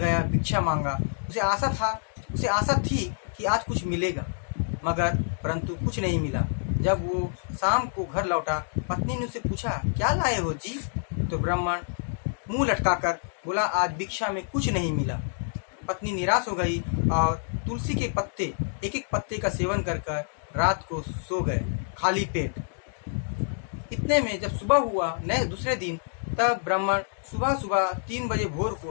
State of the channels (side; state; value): right; silent; digital silence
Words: भिक्षा मांगा। उसे आशा थी कि आज कुछ मिलेगा, मगर परंतु कुछ नहीं मिला। जब वो शाम को घर लौटा, पत्नी ने उससे पूछा, क्या लाए हो जी? तो ब्राह्मण मुंह लटकाकर बोला, आज भिक्षा में कुछ नहीं मिला। पत्नी निराश हो गई और तुलसी के पत्ते एक एक पत्ते का सेवन कर कर रात को सो गए खाली पेट। इतने में जब सुबह हुआ दूसरे दिन, तब ब्राह्मण सुबह सुबह 3 बजे भोर